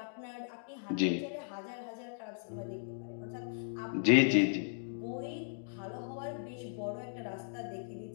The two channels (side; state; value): right; silent; digital silence